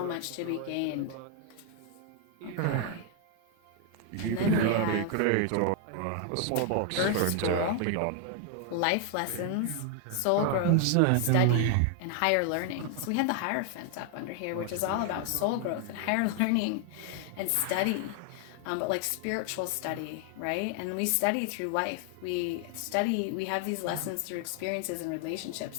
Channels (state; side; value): different; both; correlation 0.00